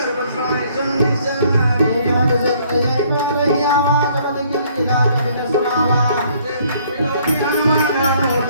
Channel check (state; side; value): inverted; both; correlation -0.62